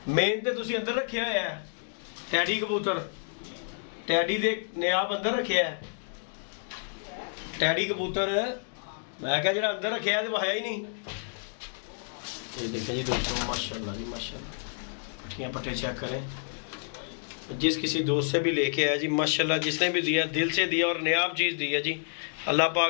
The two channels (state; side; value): silent; right; digital silence